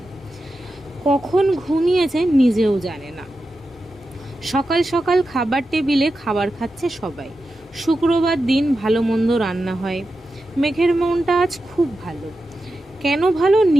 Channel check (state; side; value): normal; both; correlation 0.91